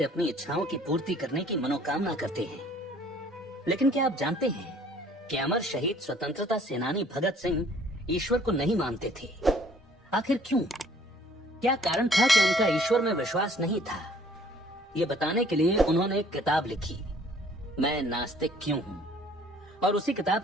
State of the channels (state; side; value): normal; both; correlation 0.57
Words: अपनी इच्छाओं की पूर्ति करने की मनोकामना करते हैं। लेकिन क्या आप जानते हैं कि अमर शहीद स्वतंत्रता सेनानी भगत सिंह ईश्वर को नहीं मानते थे? आखिर क्यों? क्या कारण था कि उनका ईश्वर में विश्वास नहीं था? ये बताने के लिए उन्होंने एक किताब लिखी, मैं नास्तिक क्यों हूँ, और उसी किताब